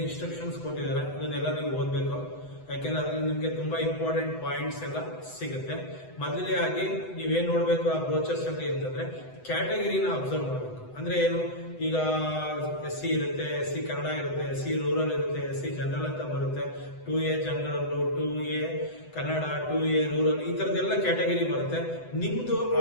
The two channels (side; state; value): right; late; 8.0 ms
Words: ಇನ್ಸ್ಟ್ರಕ್ಷನ್ಸ್ ಕೊಟ್ಟಿದ್ದಾರೆ ಅದನ್ನೆಲ್ಲ ನೀವು ಓದ್ಬೇಕು. ಯಾಕೆಂದ್ರೆ ಅದ್ರಲ್ಲಿ ನಿಮ್ಗೆ ತುಂಬಾ ಇಂಪಾರ್ಟೆಂಟ್ ಪಾಯಿಂಟ್ಸ್ ಎಲ್ಲ ಸಿಗುತ್ತೆ. ಮೊದಲೇ ಆಗಿ ನೀವೇನ್ ನೋಡ್ಬೇಕು ಆ ಬ್ರೋಚರ್ಸ್ ಅಲ್ಲಿ ಅಂತಂದ್ರೆ ಕ್ಯಾಟಗರಿನ ಅಬ್ಸರ್ವ್ ಮಾಡಬೇಕು. ಅಂದ್ರೆ ಏನು, ಈಗ SC ಇರುತ್ತೆ, SC ಕನ್ನಡ ಇರುತ್ತೆ, SC ರೂರಲ್ ಇರುತ್ತೆ, SC ಜನರಲ್ ಅಂತ ಬರುತ್ತೆ, 2A general, 2A Kannada, 2A rural, ಈ ತರದೆಲ್ಲ ಕ್ಯಾಟಗರಿ ಬರುತ್ತೆ. ನಿಮ್ದು